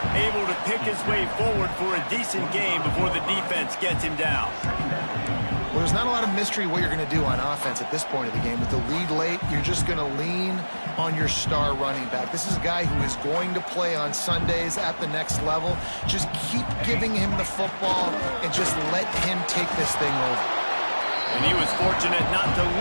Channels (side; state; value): both; inverted; correlation -1.00